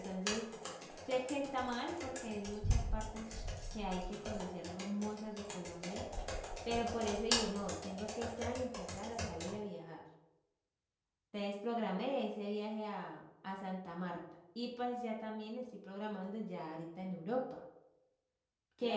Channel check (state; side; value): identical; both; correlation 1.00